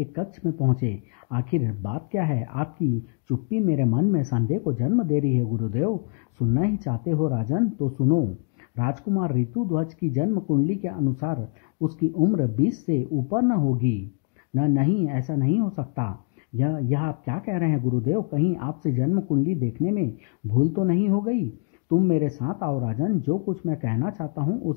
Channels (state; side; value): quieter; right; 38.0 dB